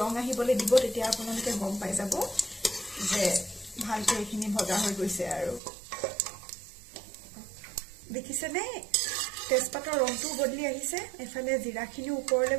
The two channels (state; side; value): drops out; left; at 5.6 s